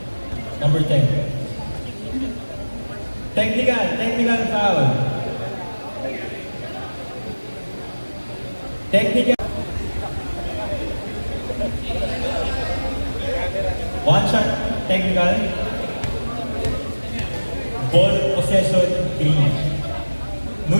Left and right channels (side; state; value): both; inverted; correlation -1.00